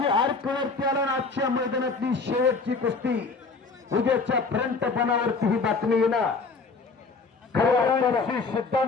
आर्कवरती आला. आजच्या मैदानातली शेवटची कुस्ती उद्याच्या फ्रंट पणावरती ही बातमी येणार. श्री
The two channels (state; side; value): quieter; right; 4.3 dB